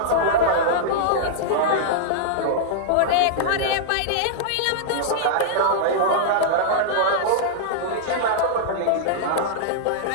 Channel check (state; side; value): different; both; correlation -0.02